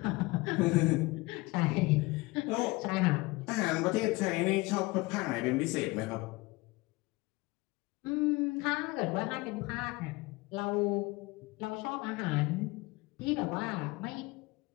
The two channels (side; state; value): right; quieter; 23.1 dB